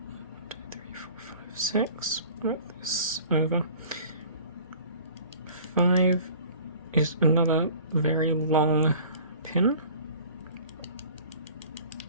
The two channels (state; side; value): inverted; both; correlation -0.46